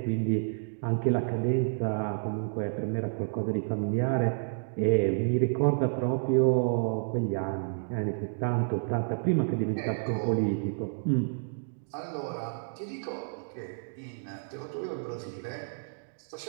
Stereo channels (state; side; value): silent; left; digital silence